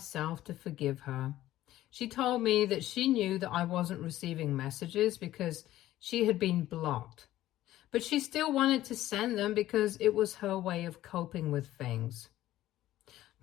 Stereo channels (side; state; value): right; quieter; 14.4 dB